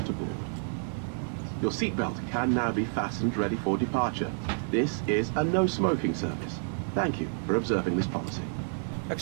board. Your seatbelt can now be fastened ready for departure. This is a no-smoking service. Thank you for observing this policy.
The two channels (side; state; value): left; silent; 58 dB below the other